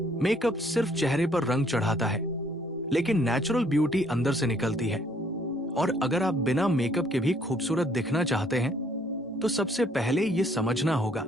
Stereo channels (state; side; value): normal; both; correlation 0.64